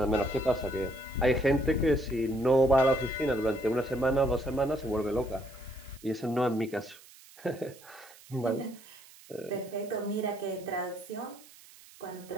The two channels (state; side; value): noise; right; hiss, 22 dB below the sound